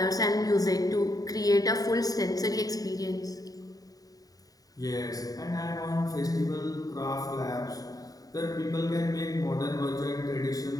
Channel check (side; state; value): right; late; 0.18 ms